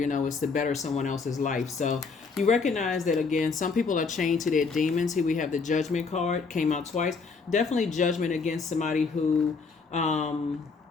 to better someone else's life. So you recognize that, again, some people are chained to their demons. Here we have the Judgment card, came out twice. Definitely judgment against somebody who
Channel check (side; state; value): right; quieter; 4.7 dB